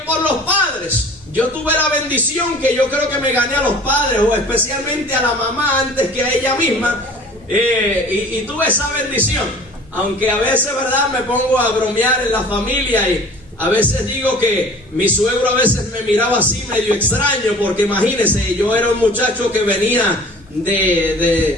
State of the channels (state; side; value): normal; both; correlation 0.47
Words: por los padres. Yo tuve la bendición que yo creo que me gané a los padres, o especialmente a la mamá antes que a ella misma, y tuve esa bendición. Aunque a veces, ¿verdad?, me pongo a bromear en la familia y a veces digo que mi suegro a veces me miraba así medio extraño, porque imagínense, yo era un muchacho que venía